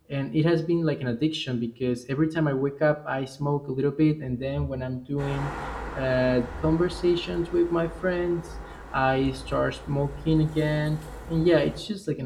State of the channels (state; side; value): identical; both; correlation 1.00